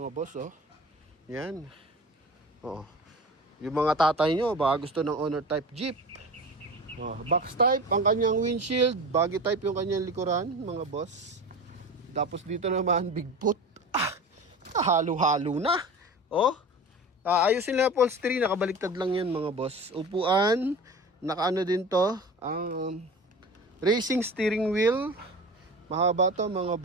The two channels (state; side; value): normal; both; correlation 0.34